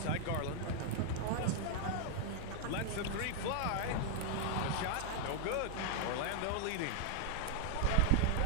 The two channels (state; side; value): different; both; correlation 0.00